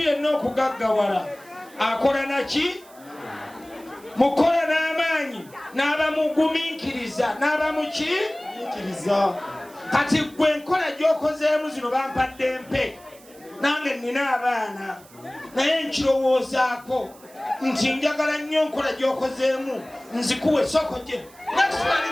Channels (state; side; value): noise; right; hiss, 24 dB below the sound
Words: okugaggawala akola naki mukola n'amaanyi n'abamugumiikiriza n'abamukiikiriza kati gwe enkola gy'okozeemu zino bampadde mpe nange nnina abaana naye nkirowoozaako nti njagala nnyo nkola gy'okozeemu nzikuwe soko gye nakisimani